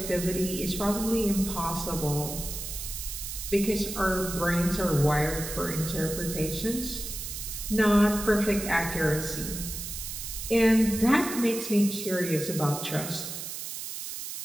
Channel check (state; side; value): noise; right; hiss, 7 dB below the sound